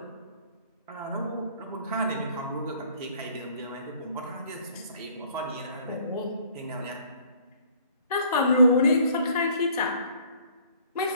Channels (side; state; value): both; inverted; correlation -0.57